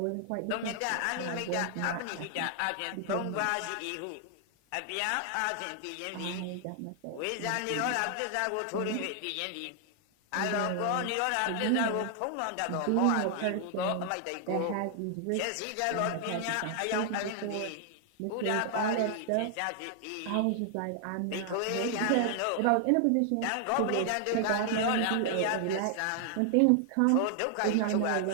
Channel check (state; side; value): different; both; correlation 0.00